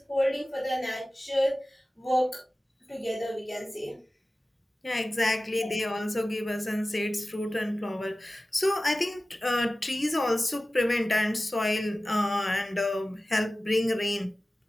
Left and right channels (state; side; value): normal; both; correlation 0.96